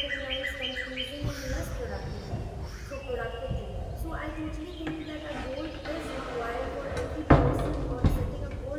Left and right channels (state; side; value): identical; both; correlation 1.00